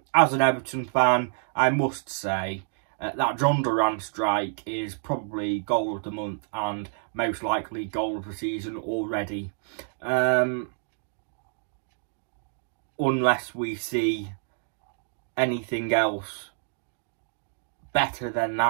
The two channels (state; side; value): silent; left; digital silence